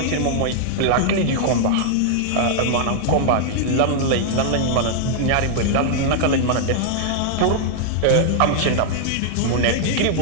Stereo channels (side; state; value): both; different; correlation -0.01